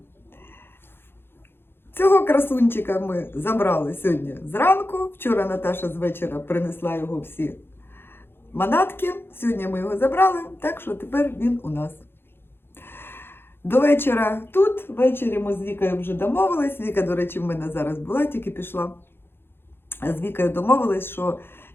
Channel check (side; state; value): right; late; 0.11 ms